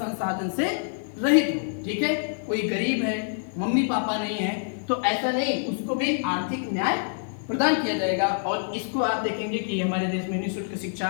से रहित हो। ठीक है, कोई गरीब है, मम्मी पापा नहीं है, तो ऐसा नहीं, उसको भी आर्थिक न्याय प्रदान किया जाएगा। और इसको आप देखेंगे कि हमारे देश में निःशुल्क शिक्षा,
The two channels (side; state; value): right; silent; digital silence